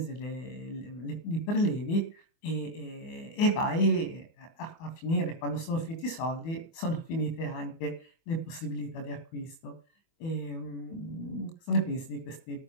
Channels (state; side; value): late; right; 24 ms